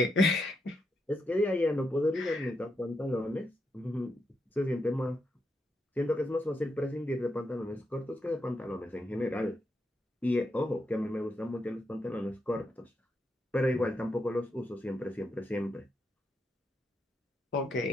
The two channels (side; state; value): both; normal; correlation 0.82